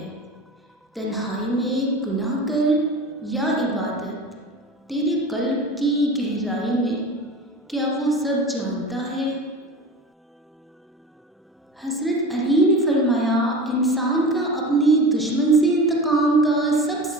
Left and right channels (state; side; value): normal; both; correlation 0.33